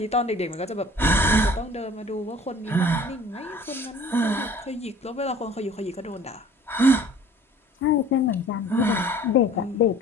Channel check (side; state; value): both; normal; correlation 0.49